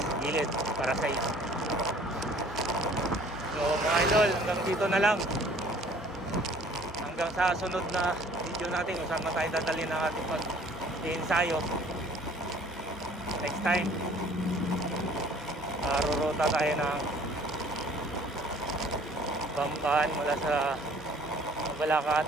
gilid para sa iyo. So mga idol, hanggang dito na lang. Hanggang sa sunod na video natin kung saan tayo dadalhin ng ating pag-ensayo next time. Rurota tayo ng Bamban mula sa Balakat,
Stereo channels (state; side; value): normal; both; correlation 0.54